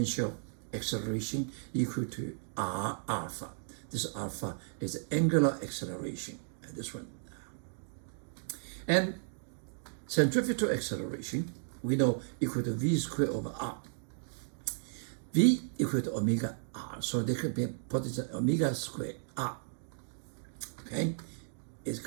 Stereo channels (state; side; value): silent; left; digital silence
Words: acceleration equal to r alpha. This alpha is the angular acceleration, this one. And centrifugal acceleration, we know equal to v squared over r. V equal to omega r, so they could be put as omega squared r, okay? It's